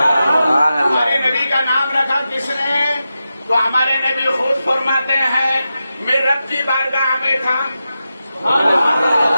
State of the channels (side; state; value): both; inverted; correlation -0.90